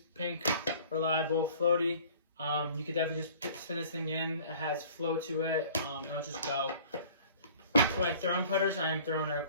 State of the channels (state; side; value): inverted; both; correlation -0.49